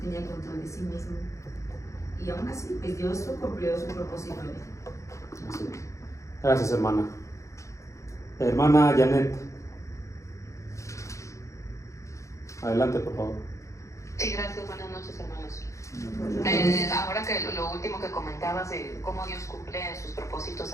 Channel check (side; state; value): right; late; 0.15 ms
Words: control de sí mismo, y aún así pues Dios cumplió su propósito. Gracias, hermana. Hermana Janet, adelante, por favor. Sí, gracias. Buenas noches, hermanos. Ahora que lo último que comentabas de cómo Dios cumple sus propósitos